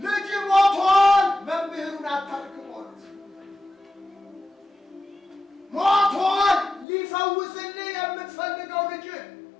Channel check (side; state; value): right; drops out; at 6.9 s